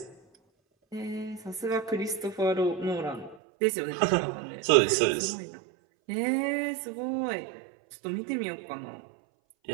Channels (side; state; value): left; drops out; at 3.4 s